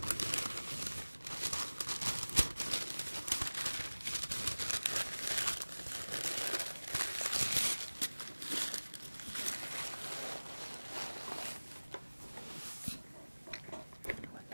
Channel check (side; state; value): both; inverted; correlation -1.00